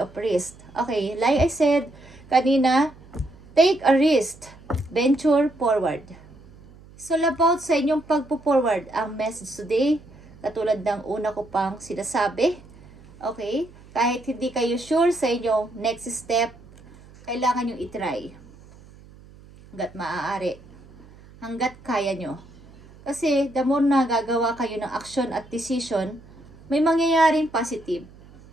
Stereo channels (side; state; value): right; noise; hum, 22 dB below the sound